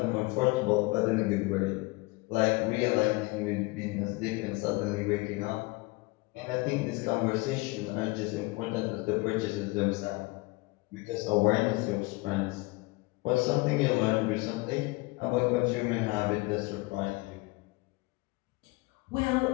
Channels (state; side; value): quieter; right; 24.2 dB